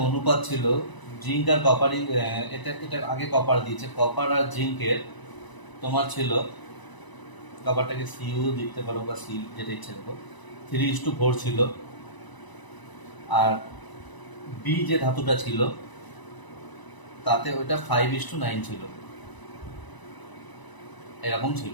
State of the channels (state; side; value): late; right; 1.0 ms